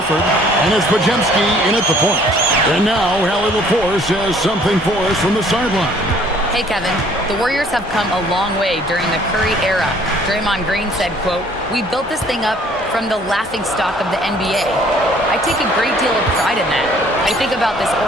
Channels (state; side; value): normal; both; correlation 0.57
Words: and it's Podziemski in at the point. And now Hallie LaForce has something for us from the sideline. Hey, Kevin, the Warriors have come a long way during the Curry era. Draymond Green said, quote, "We built this thing up from the laughingstock of the NBA. I take a great deal of pride in that. I think about this